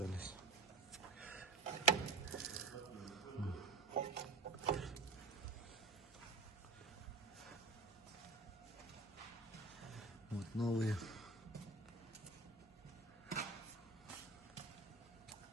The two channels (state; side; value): quieter; left; 3.8 dB